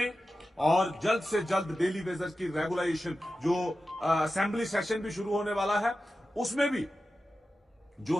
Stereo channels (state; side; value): normal; both; correlation 0.93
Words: और जल्द से जल्द डेली वेजर की रेगुलेशन, जो असेंबली सेशन भी शुरू होने वाला है, उसमें भी जो